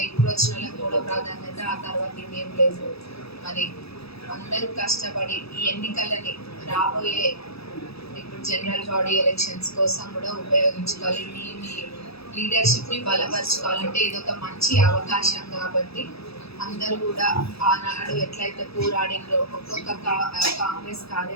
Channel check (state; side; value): late; right; 0.77 ms